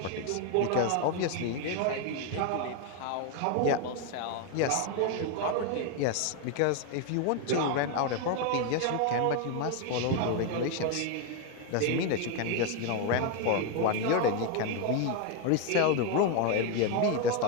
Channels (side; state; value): both; different; correlation 0.01